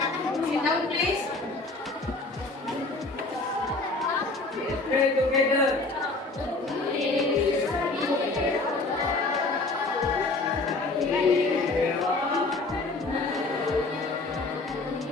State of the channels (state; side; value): quieter; right; 3.3 dB